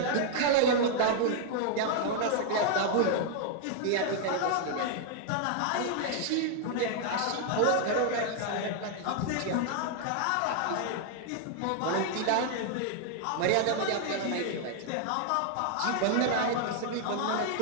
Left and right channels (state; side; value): different; both; correlation 0.00